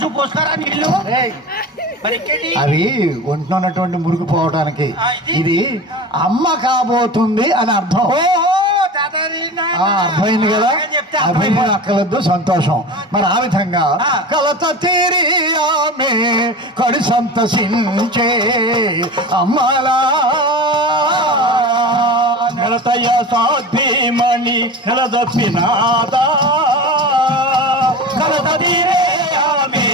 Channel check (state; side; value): normal; both; correlation 0.31